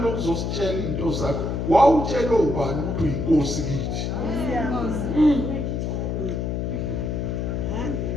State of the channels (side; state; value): left; noise; hum, 1 dB below the sound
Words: into zakho. Wawutshela ubani ukuthi uyinkosi kithi?